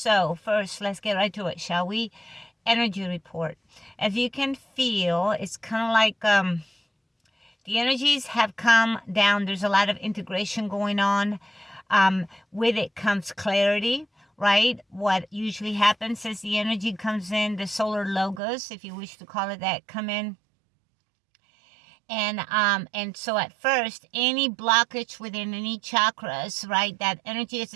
first, let's get right to it, shall we? Energy report. As you can feel, it's kind of like the energies have come down. There's a lot of integration going on. With it comes clarity. Right? What usually happens is the energy comes in, the solar logos, if you wish to call it that, come in. And so at first, any blockage within any chakras, right, that energy as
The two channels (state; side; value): drops out; left; at 18.4 s